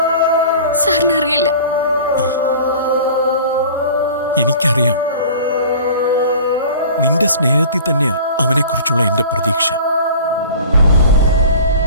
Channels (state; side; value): inverted; both; correlation -0.42